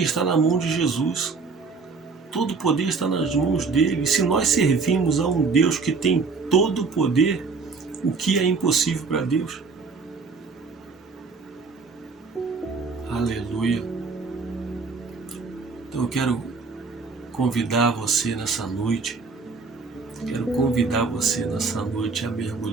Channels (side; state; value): left; quieter; 4.5 dB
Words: está na mão de Jesus. Todo o poder está nas mãos dele. E se nós servimos a um Deus que tem todo o poder, o que é impossível para Deus? Aleluia. Então eu quero convidar você nessa noite. Quero convidar você nessa noite a